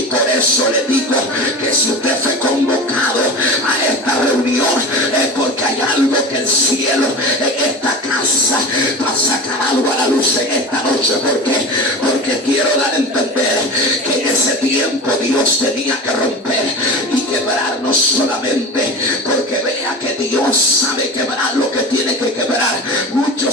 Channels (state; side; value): normal; both; correlation 0.31